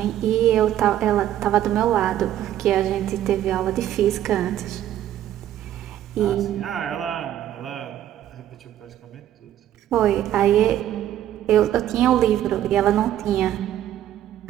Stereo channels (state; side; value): quieter; left; 12.0 dB